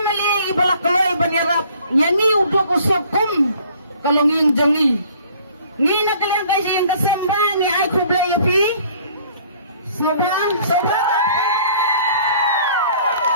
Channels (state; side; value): inverted; both; correlation -0.55